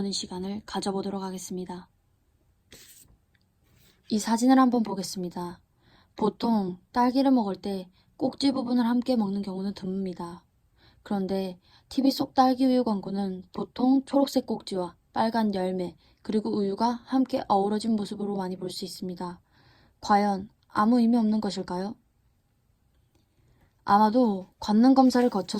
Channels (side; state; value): both; identical; correlation 1.00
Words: 시간을 가져보도록 하겠습니다. 이 사진을 한번 보겠습니다. 보통 딸기를 먹을 때 꼭지 부분을 함께 먹는 경우는 드뭅니다. 그런데 TV 속 딸기 우유 광고는 보통 초록색 꼭지와 빨간 열매 그리고 우유가 함께 어우러진 모습으로 많이 볼 수 있습니다. 과연 아무 의미 없는 것일까요? 아마도 관능 검사를 거쳐